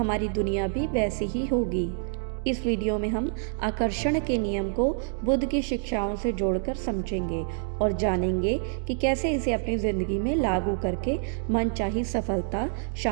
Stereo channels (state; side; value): silent; left; digital silence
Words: दुनिया भी वैसी ही होगी। इस वीडियो में हम आकर्षण के नियम को बुद्ध की शिक्षाओं से जोड़कर समझेंगे और जानेंगे कि कैसे इसे अपनी ज़िंदगी में लागू करके मनचाही सफलता,